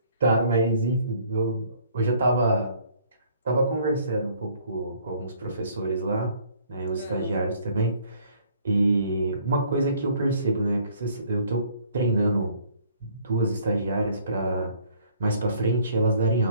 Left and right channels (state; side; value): inverted; both; correlation -0.59